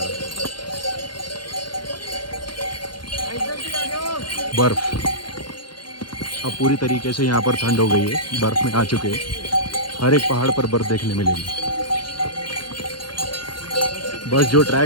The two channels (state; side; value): late; right; 0.71 ms